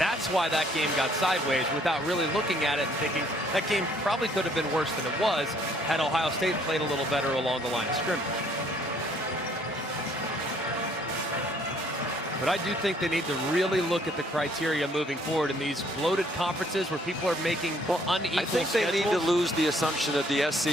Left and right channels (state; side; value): normal; both; correlation 0.63